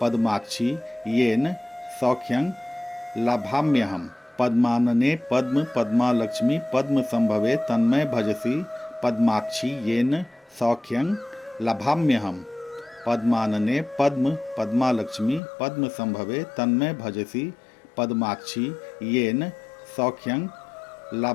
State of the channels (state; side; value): drops out; right; at 15.4 s